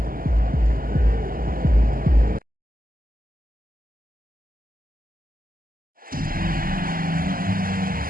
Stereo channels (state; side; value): late; left; 0.42 ms